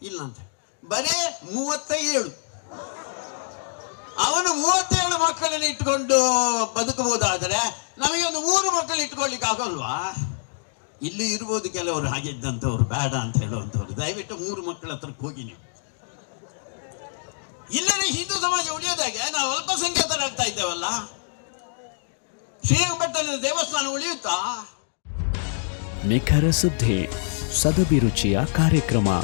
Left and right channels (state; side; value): silent; right; digital silence